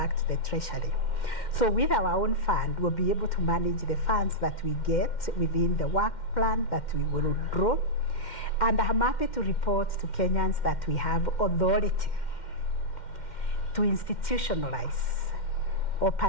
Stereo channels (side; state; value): right; late; 2.1 ms